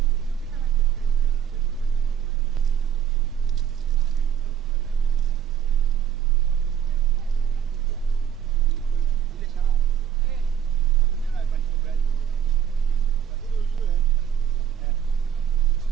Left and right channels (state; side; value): quieter; left; 8.7 dB